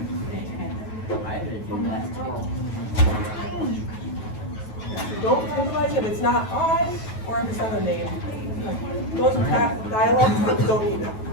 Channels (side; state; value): right; late; 9.3 ms